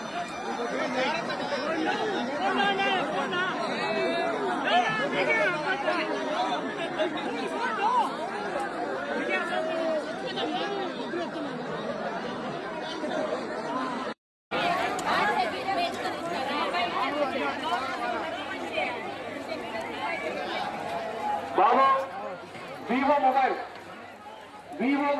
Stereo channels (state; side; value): identical; both; correlation 1.00